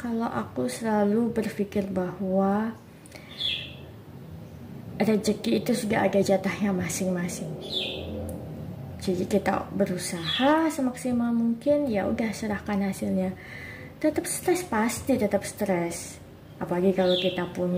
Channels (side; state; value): both; identical; correlation 1.00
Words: aku selalu berpikir bahwa rezeki itu sudah ada jatahnya masing-masing. Jadi kita berusaha semaksimal mungkin, ya udah serahkan hasilnya. Tetap stres, pasti tetap stres. Apalagi kalau kita